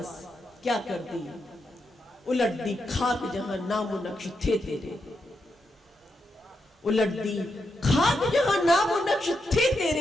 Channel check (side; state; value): both; normal; correlation 0.84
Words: क्या करती। उलट दी खाक जहां नामो नक्श थे तेरे, उलट दी खाक जहां नामो नक्श थे